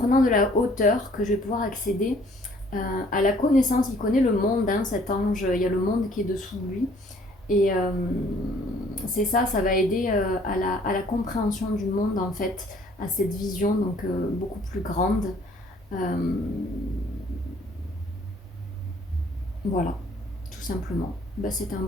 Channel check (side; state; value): both; normal; correlation 0.59